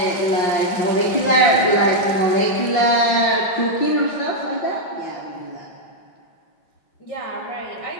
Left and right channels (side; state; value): right; late; 5.7 ms